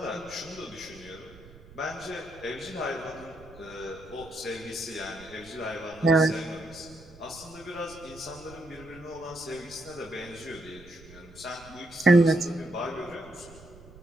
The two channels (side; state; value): right; noise; rumble, 20 dB below the sound